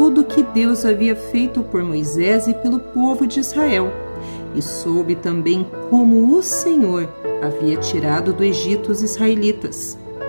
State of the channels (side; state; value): both; inverted; correlation -1.00